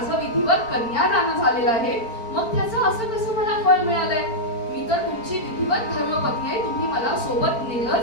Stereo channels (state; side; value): late; right; 4.4 ms